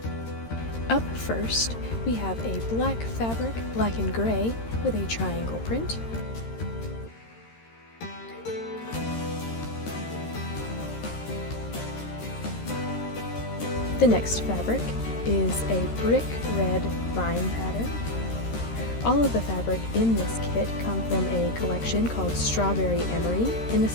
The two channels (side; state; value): right; late; 13 ms